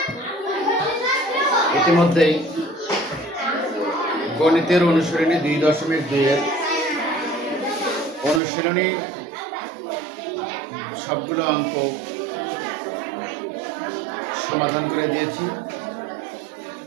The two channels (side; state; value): left; drops out; at 8.4 s